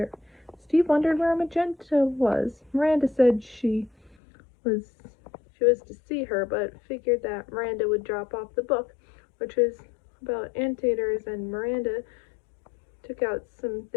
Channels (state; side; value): drops out; right; at 4.2 s